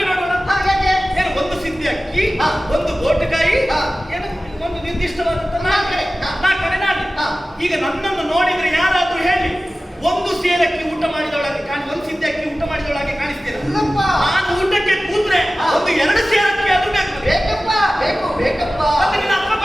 ನೋಡೋಣ. ಏನು ಒಂದು ಸಿದ್ಧಿ ಅಕ್ಕಿ, ಒಂದು ಗೋಟುಕಾಯಿ, ಏನು ಒಂದು ನಿರ್ದಿಷ್ಟವಾದಂತ 4 ಕಡೆ ನಾನು. ಈಗ ನನ್ನನ್ನು ನೋಡಿದ್ರೆ ಯಾರಾದ್ರೂ ಹೇಳಿ ಒಂದು ಸೇರಕ್ಕಿ ಊಟ ಮಾಡಿದವಳಾಗಿ ಒಂದು ಸಿದ್ಧಿ ಅಕ್ಕಿ ಊಟ ಮಾಡಿದವಳಾಗಿ ಕಾಣಿಸ್ತೇನೆ. ನಾನು ಊಟಕ್ಕೆ ಕೂತ್ರೆ ಒಂದು 2 ಸೇರಕ್ಕಿ ಅದು ಬೇಕಪ್ಪ ಬೇಕು ಬೇಕಪ್ಪ. ಮತ್ತೆ ನಿನ್ನ ಅಪ್ಪ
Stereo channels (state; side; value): normal; both; correlation 0.96